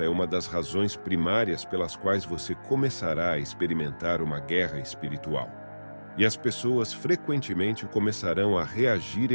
é uma das razões primárias pelas quais você começará a experimentar uma guerra espiritual. E as pessoas frequentemente começarão a reagir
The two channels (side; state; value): both; inverted; correlation -1.00